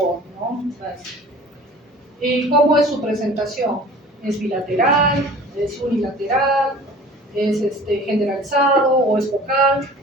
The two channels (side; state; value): both; normal; correlation 0.44